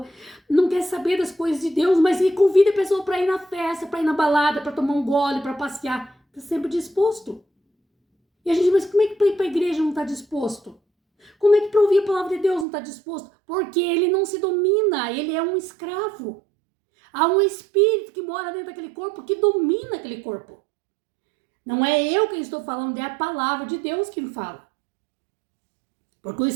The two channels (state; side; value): drops out; left; at 12.7 s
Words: não quer saber das coisas de Deus, mas ele convida a pessoa para ir na festa, para ir na balada, para tomar um gole, para passear, está sempre disposto. E a gente diz, mas como é que para ir para a igreja não está disposto? Como é que para ouvir a palavra de Deus não está disposto? Porque ele não se domina, ele é um escravo. Há um espírito que mora dentro daquele corpo, que domina aquele corpo. Não é eu quem estou falando, é a palavra de Deus que me fala. Porque o